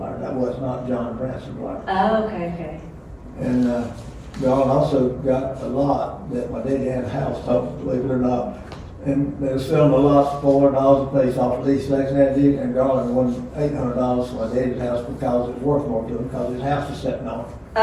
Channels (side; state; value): both; identical; correlation 1.00